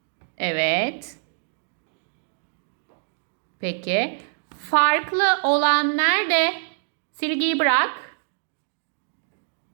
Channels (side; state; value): left; silent; digital silence